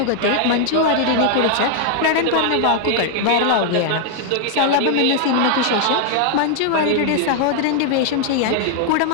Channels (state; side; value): different; both; correlation 0.00